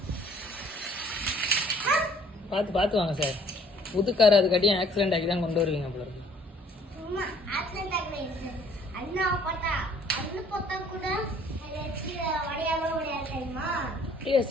பார்த்து பார்த்து வாங்க சார். புதுக்கார அதுக்காட்டியும் ஆக்சிடென்ட் ஆகி தான் கொண்டு வருவீங்க போல இருக்கு.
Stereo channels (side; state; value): both; normal; correlation 0.58